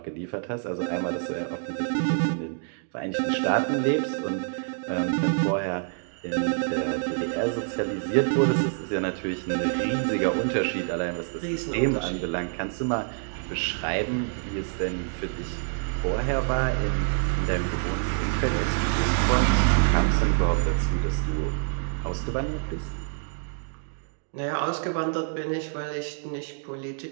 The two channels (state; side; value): silent; left; 60 dB below the other